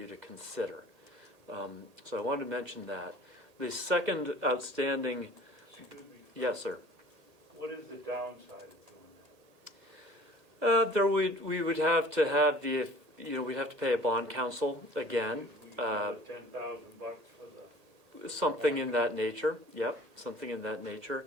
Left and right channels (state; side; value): late; left; 1.8 ms